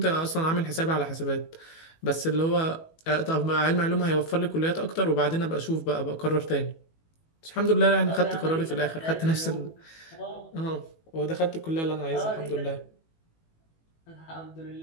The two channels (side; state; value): right; late; 18 ms